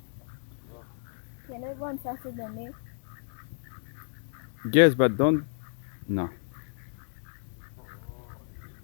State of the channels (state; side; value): silent; right; digital silence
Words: Can it run faster than me? Yes, but don't. No.